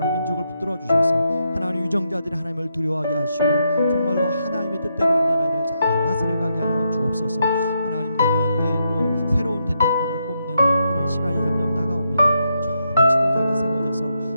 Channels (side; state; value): both; inverted; correlation -0.80